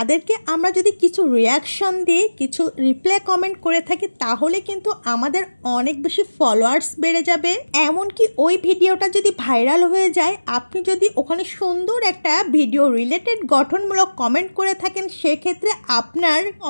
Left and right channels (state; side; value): inverted; both; correlation -1.00